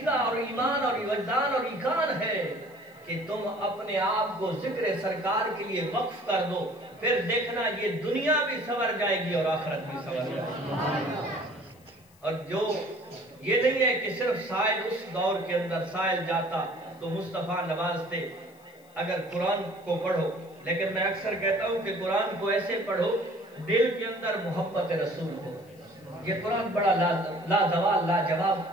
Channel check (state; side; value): noise; left; hiss, 29 dB below the sound